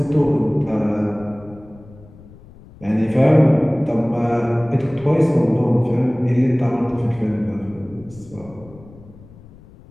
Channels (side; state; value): left; noise; rumble, 22 dB below the sound